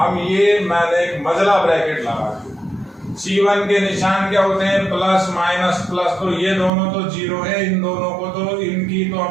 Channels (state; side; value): drops out; left; at 6.7 s